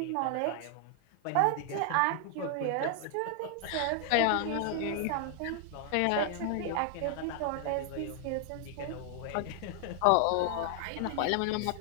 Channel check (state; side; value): different; both; correlation 0.00